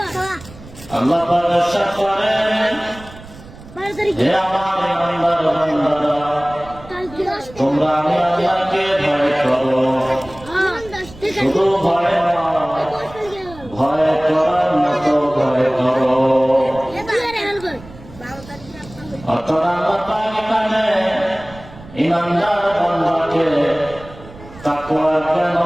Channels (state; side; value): noise; right; rumble, 19 dB below the sound